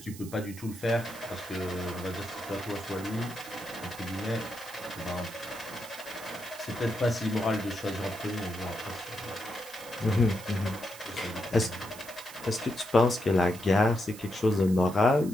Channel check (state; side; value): noise; right; hiss, 16 dB below the sound